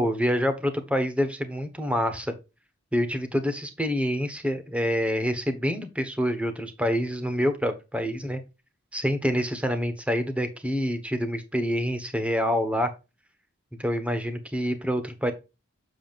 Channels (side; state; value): both; normal; correlation 0.82